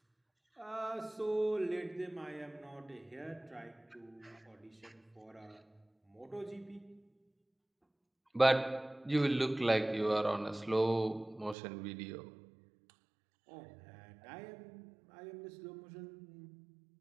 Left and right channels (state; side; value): drops out; left; at 11.6 s